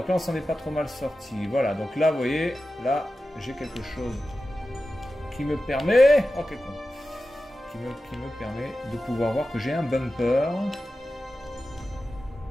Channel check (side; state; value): both; normal; correlation 0.93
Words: là on s'en est pas trop mal sorti. Voilà, donc là vous voyez, là j'ai quelque chose qui me permet, oh quel con, qui me permet de pouvoir voir que j'ai un bumper.